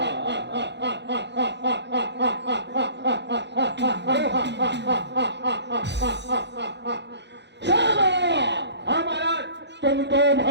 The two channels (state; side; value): late; left; 0.51 ms